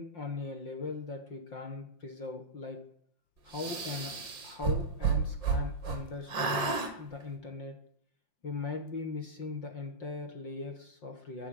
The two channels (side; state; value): right; late; 5.6 ms